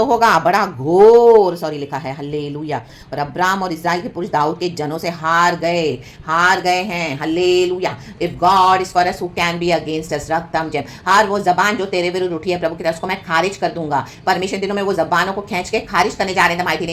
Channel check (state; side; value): identical; both; correlation 1.00